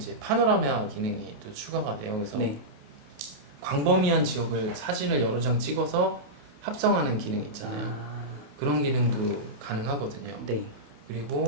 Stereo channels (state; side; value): late; left; 28 ms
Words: 파노라마 기능이 또 추가가 돼요. 그래서 네. 광범위한 지역을 사진을 여러 장 찍어서 합성하는 기능 있잖아요. 아. 그런 기능도 가능하거든요. 네.